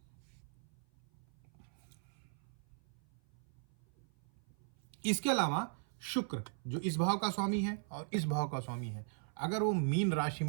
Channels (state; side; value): silent; left; 52 dB below the other